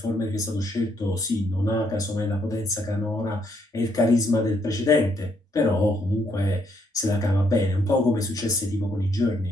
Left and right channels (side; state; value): both; normal; correlation 0.73